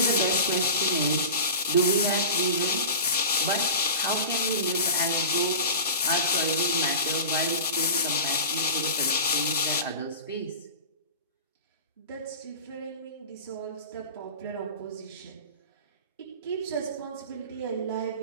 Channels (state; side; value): inverted; both; correlation -0.34